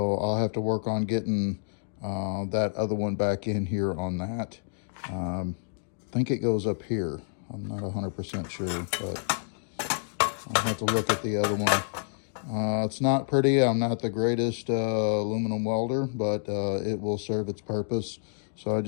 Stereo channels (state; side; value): silent; right; digital silence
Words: I'll have to work on getting that other one back in here on that. I think it goes up here. I'm not 100% sure, but I'll have to look at the other one. It's not pretty. I'm not the greatest aluminum welder, but it will serve its purpose. So I